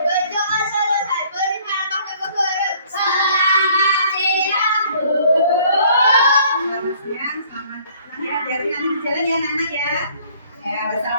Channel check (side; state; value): both; inverted; correlation -0.58